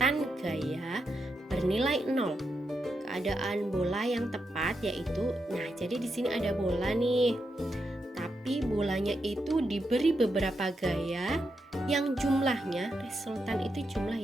gaya bernilai 0. Keadaan bola yang tepat yaitu, jadi di sini ada bola nih. Tapi bolanya itu diberi beberapa gaya yang jumlahnya, resultan itu jumlah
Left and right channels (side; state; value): both; normal; correlation 0.84